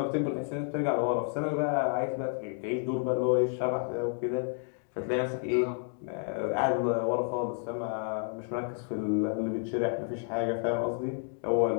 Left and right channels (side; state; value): right; silent; 57 dB below the other